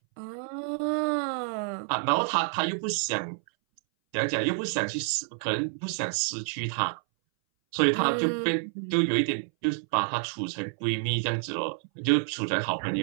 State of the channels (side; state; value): left; silent; 59 dB below the other